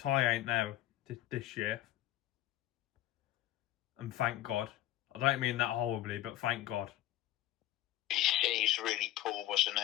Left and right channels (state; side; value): quieter; right; 14.3 dB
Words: ain't there this year. And thank God. I don't mean that horribly, but thank God. He's really poor, wasn't